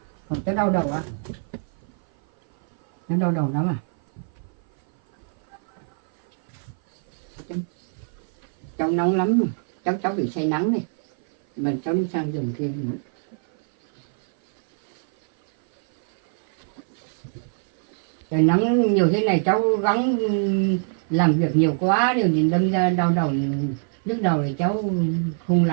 Còn cháu đau đầu à? Cháu đau đầu lắm à? Cháu nóng lắm rồi. Cháu bị say nắng này. Mà cháu đi sang giường kia nữa. Trời nắng nhiều thế này cháu gắng làm việc nhiều quá điều nhìn đâm ra đau đầu. Lúc đầu thì cháu không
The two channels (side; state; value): left; silent; 57 dB below the other